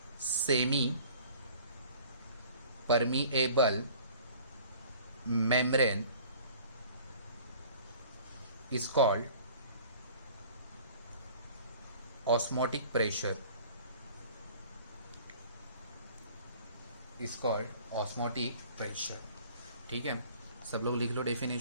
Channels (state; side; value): inverted; both; correlation -0.49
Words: semi permeable membrane is called osmotic pressure, ठीक है। सब लोग लिख लो